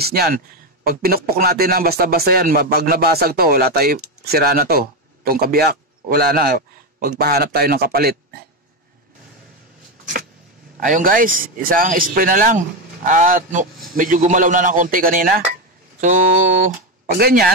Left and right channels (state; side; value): normal; both; correlation 0.11